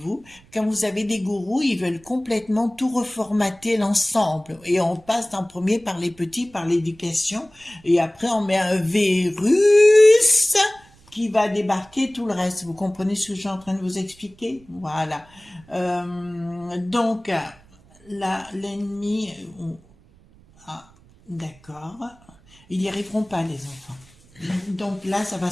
Quand vous avez des gourous, ils veulent complètement tout reformater l'ensemble. Et on passe en premier par les petits, par l'éducation. Et après, on met un virus qui va débarquer tout le reste. Vous comprenez ce que je suis en train de vous expliquer? Voilà. Donc, là, l'ennemi... Ah, d'accord. Ils n'y arriveront pas, les enfants. Donc là, ça va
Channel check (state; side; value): noise; right; rumble, 28 dB below the sound